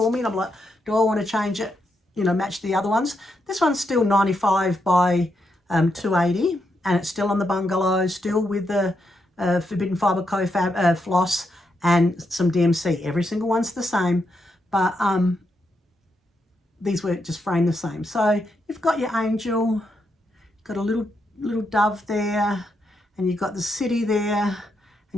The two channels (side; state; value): both; normal; correlation 0.81